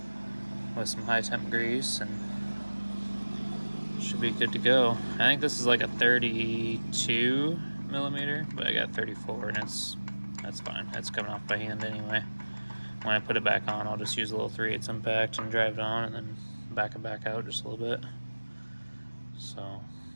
with some high temp grease, and should be good to go. I think this is like a 32 millimeter, but I got 34, and that's fine. It's coming off by hand anyway. When I put it back on, I'll just use a little 3/8 impact and drive it on, and then back it back out just a little bit. So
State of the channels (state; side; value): inverted; both; correlation -1.00